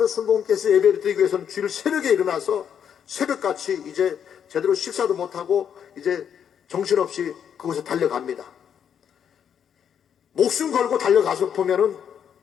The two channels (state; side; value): quieter; right; 8.3 dB